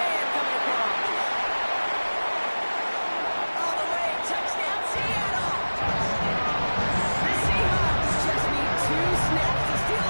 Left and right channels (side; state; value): both; inverted; correlation -1.00